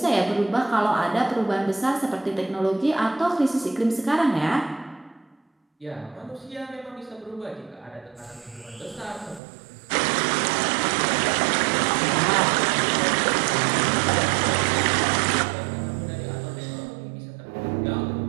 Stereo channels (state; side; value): drops out; left; at 9.4 s